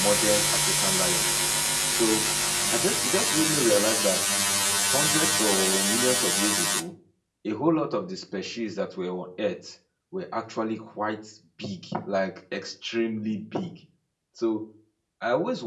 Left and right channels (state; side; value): identical; both; correlation 1.00